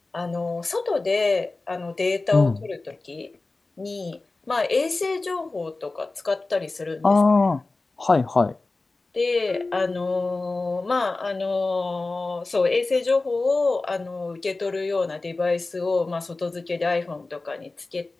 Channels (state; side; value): quieter; right; 3.4 dB